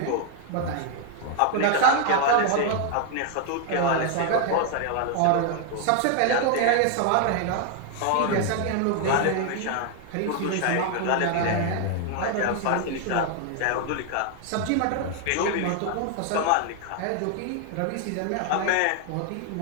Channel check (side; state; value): both; different; correlation 0.00